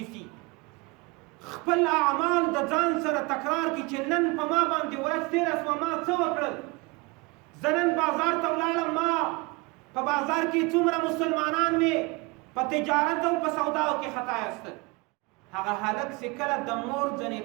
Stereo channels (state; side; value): quieter; left; 26.3 dB